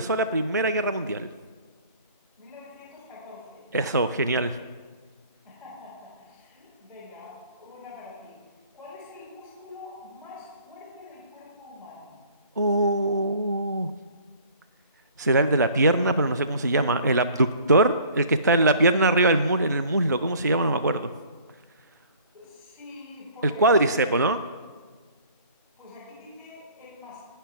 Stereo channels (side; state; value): both; inverted; correlation -0.52